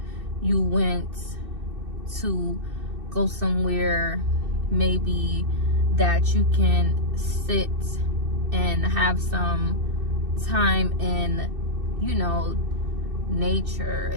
You went to go somewhere maybe that you can sit and have some time in, you know, nature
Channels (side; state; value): left; late; 2.6 ms